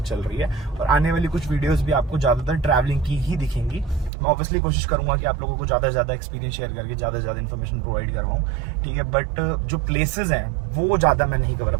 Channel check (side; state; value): left; drops out; at 4.1 s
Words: चल रही है। और आने वाली कुछ वीडियोस भी आपको ज्यादातर ट्रैवलिंग की ही दिखेंगी। मैं ऑब्वियसली कोशिश करूंगा कि आप लोगों को ज्यादा से ज्यादा एक्सपीरियंस शेयर करके ज्यादा से ज्यादा इन्फॉर्मेशन प्रोवाइड करवाऊं, ठीक है। बट जो प्लेसेस हैं वो ज्यादा मैं नहीं कवर